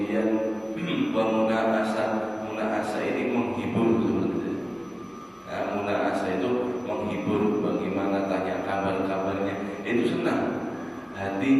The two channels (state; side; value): identical; both; correlation 1.00